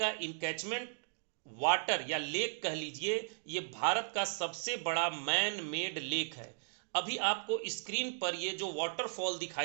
इनकैचमेंट वाटर या लेक कह लीजिए, ये भारत का सबसे बड़ा मैन मेड लेक है। अभी आपको स्क्रीन पर ये जो वाटरफॉल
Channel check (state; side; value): silent; left; digital silence